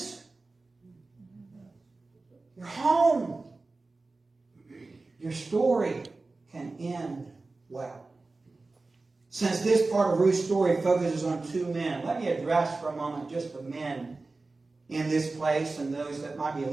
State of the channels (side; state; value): left; quieter; 3.5 dB